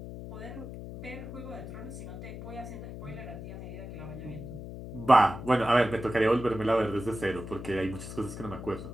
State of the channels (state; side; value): noise; left; hum, 10 dB below the sound